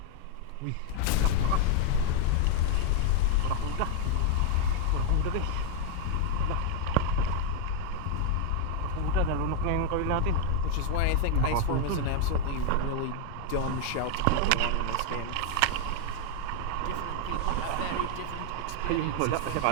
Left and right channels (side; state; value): both; different; correlation 0.00